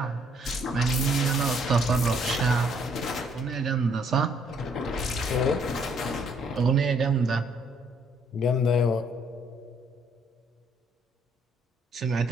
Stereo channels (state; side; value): normal; both; correlation 0.66